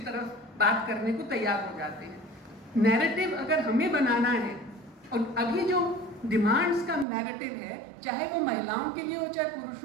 तरफ बात करने को तैयार हो जाते हैं। नैरेटिव अगर हमें बनाना है, और अभी जो डिमांड्स का नैरेटिव है, चाहे वो महिलाओं के लिए हो चाहे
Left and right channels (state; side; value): drops out; left; at 7.1 s